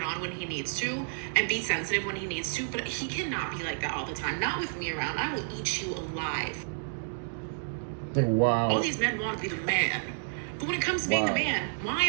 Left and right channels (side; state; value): left; silent; digital silence